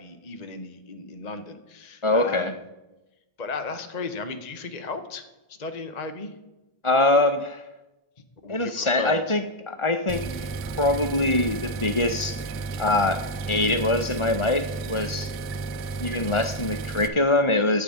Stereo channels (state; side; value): late; right; 1.4 ms